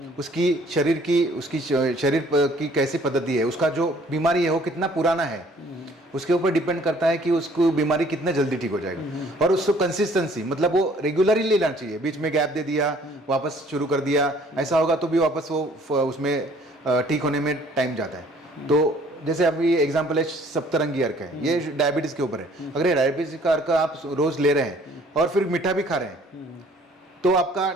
उसकी शरीर की कैसी पद्धति है, उसका जो बीमारी है वो कितना पुराना है, उसके ऊपर डिपेंड करता है कि उसको बीमारी कितने जल्दी ठीक हो जाएगा। और उसको कंसिस्टेंसी मतलब वो रेगुलरली लेना चाहिए, बीच में गैप दे दिया वापस शुरू कर दिया ऐसा होगा तो भी वापस वो उसमें ठीक होने में टाइम जाता है। तो जैसे अभी एग्जाम्पल है सप्तरंगी अर्क है, ये डायबिटीज के ऊपर है। अगर ये डायबिटीज का अर्क आप रोज ले रहे हैं और फिर मीठा भी खा रहे हैं तो आपका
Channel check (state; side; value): normal; both; correlation 0.57